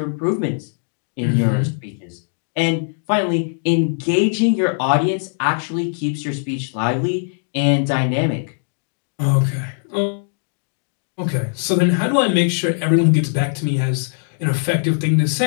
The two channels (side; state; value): right; silent; digital silence